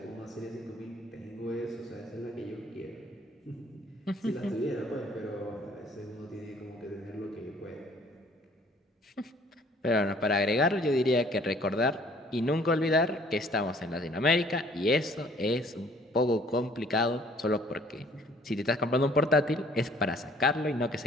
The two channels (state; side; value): normal; both; correlation 0.57